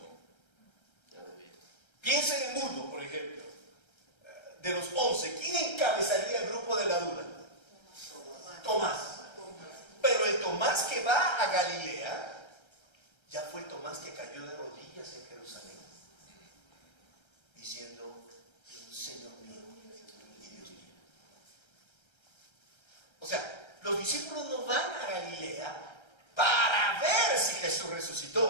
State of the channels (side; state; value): right; late; 1.3 ms